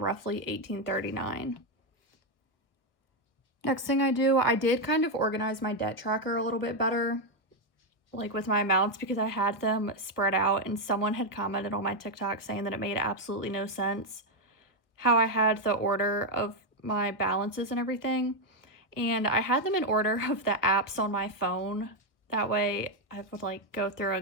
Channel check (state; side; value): late; right; 1.1 ms